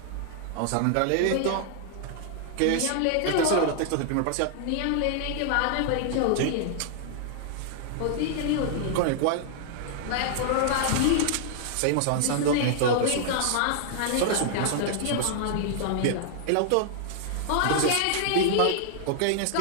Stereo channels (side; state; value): both; different; correlation -0.01